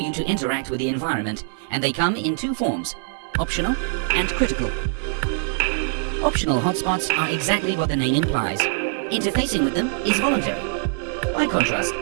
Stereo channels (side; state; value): left; silent; 61 dB below the other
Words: to interact with the environment, and they come in two forms: optional and critical. Optional hotspots are exactly what the name implies. Interfacing with them is voluntary. By contrast,